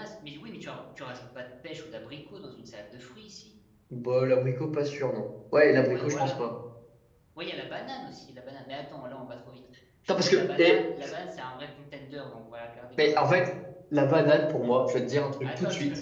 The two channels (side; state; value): both; identical; correlation 1.00